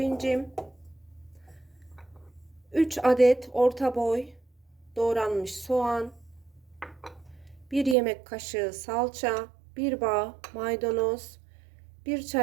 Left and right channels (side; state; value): left; drops out; at 8.0 s